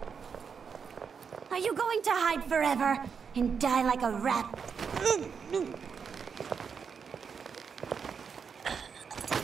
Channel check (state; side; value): quieter; left; 6.3 dB